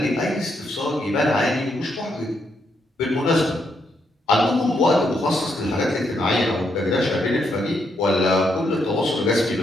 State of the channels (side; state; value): both; normal; correlation 0.78